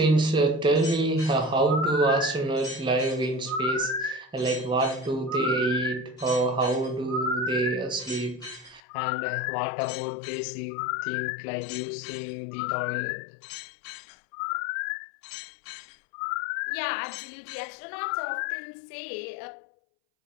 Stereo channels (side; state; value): right; drops out; at 8.8 s